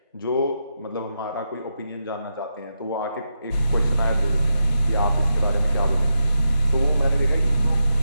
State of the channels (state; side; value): inverted; both; correlation -0.85